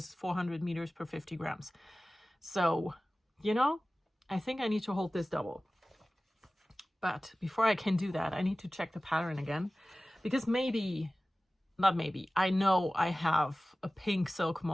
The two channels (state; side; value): normal; both; correlation 0.97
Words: is 400 meters per 50 grams. So, you know, I think I need to hold this double. But before I can do that, I need to check the pattern again. Because I know I have a pink silk